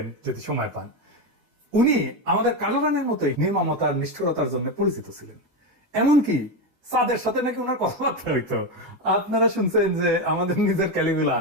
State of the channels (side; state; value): left; late; 8.3 ms